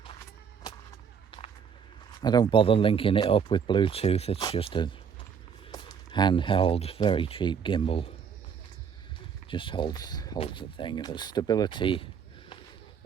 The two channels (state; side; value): quieter; left; 7.0 dB